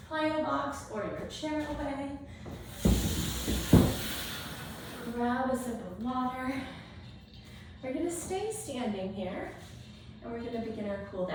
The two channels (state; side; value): identical; both; correlation 1.00